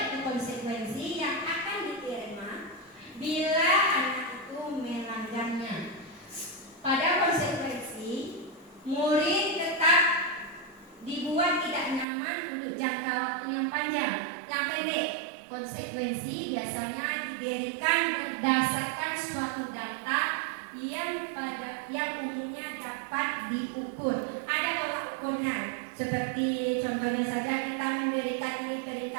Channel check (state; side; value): drops out; left; at 12.1 s